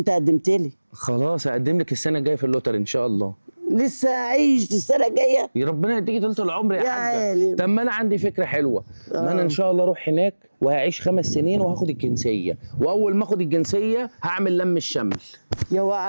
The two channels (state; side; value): inverted; both; correlation -1.00